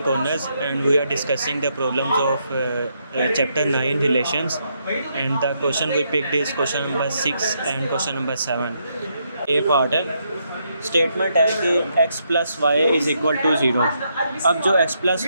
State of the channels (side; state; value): both; inverted; correlation -0.78